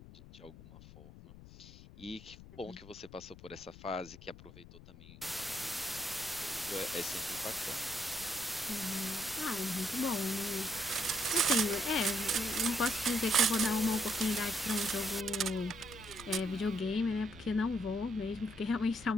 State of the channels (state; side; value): noise; left; rumble, 18 dB below the sound